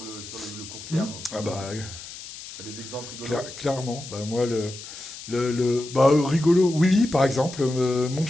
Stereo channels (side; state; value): left; noise; hiss, 13 dB below the sound